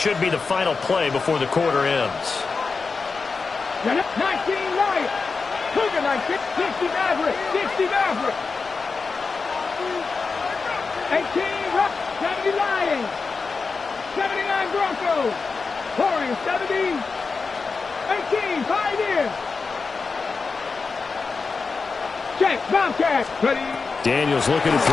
be the final play before the quarter ends. 19 Lions. Cougar 19. 60 Maverick. 60 Maverick. 18 Rock. 70 Lions. 79 Broncos. Warriors 70. 18 Pioneers. Check. Bobcats. Ready. Daniels looking to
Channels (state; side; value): quieter; right; 4.6 dB